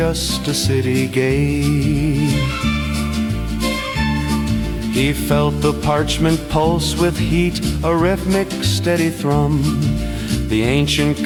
a city gate. He felt the parchment pulse with heat, a rhythmic steady thrum. The ancient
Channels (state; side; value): identical; both; correlation 1.00